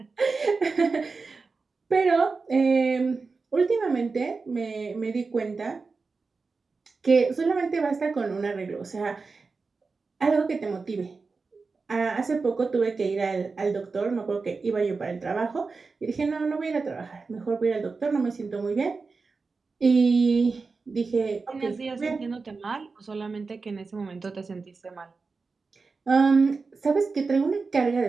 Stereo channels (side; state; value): left; quieter; 4.3 dB